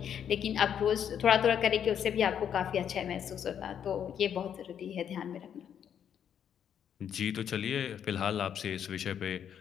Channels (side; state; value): right; quieter; 8.8 dB